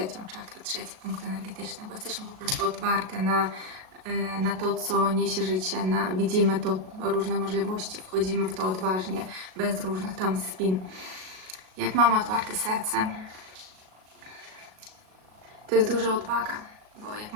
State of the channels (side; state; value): left; late; 38 ms